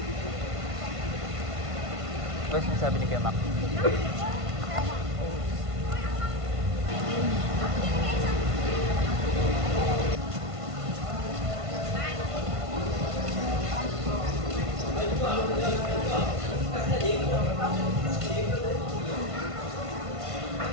Ano sinasabi ni Kuya Mac?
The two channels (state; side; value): late; left; 1.5 ms